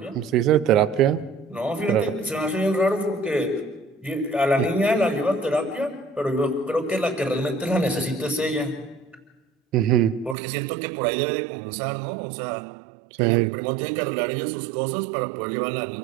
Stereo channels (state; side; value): drops out; left; at 10.4 s